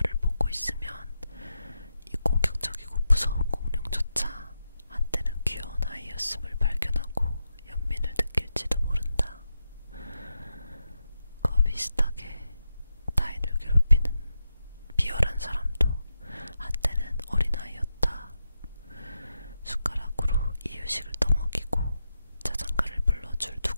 보고 있으면 이 공격적이고 무서운 공룡조차 한때는 귀여운 아이였음을 발견하고 연민을 느낄지도 모른다. 그와 비슷하게 타인을 괴롭히는 비열한 사람도 한때는 어린아이였다. 숟가락으로 이유식을 떠먹이고 자장가를 불러줄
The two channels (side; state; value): both; inverted; correlation -0.87